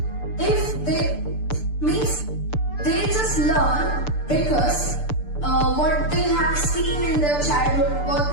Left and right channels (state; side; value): late; right; 6.8 ms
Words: If they means they just learn because what they have seen in their childhood, what